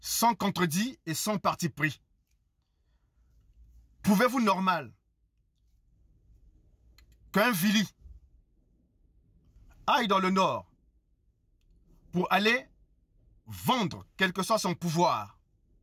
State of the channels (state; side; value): identical; both; correlation 1.00